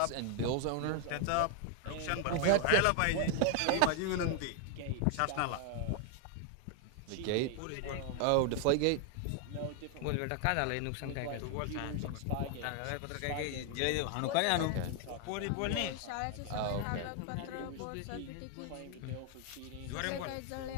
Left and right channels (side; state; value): both; different; correlation 0.00